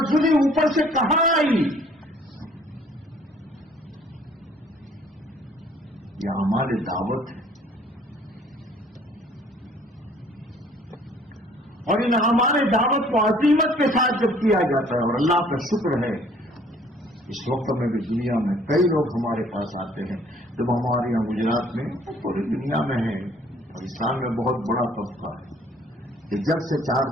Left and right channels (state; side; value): normal; both; correlation 0.58